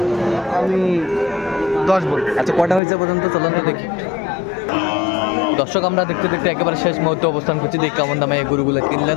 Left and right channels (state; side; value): drops out; right; at 2.8 s